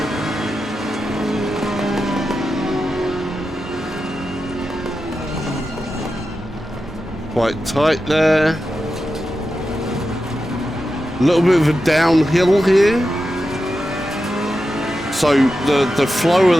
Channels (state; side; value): normal; both; correlation 0.90